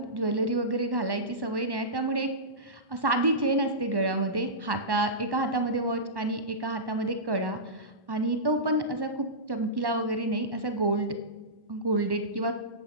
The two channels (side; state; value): left; late; 1.1 ms